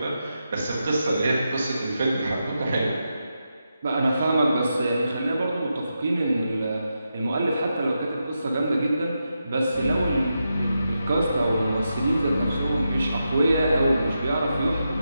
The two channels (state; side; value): inverted; both; correlation -0.87